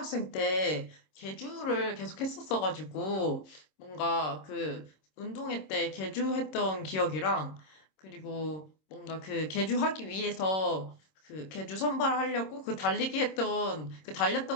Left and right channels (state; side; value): late; right; 26 ms